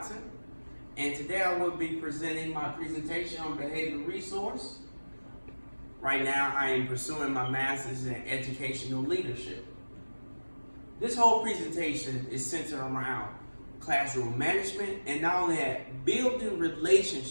and today I will be presenting my presentation on behavioral resource. Right now, I am pursuing my master's in educational leadership. This whole presentation is centered around classroom management and not only that, building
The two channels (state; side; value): inverted; both; correlation -1.00